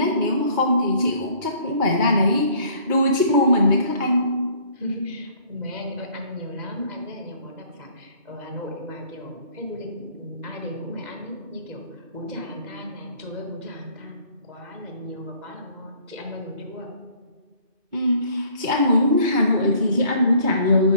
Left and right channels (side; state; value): left; late; 2.5 ms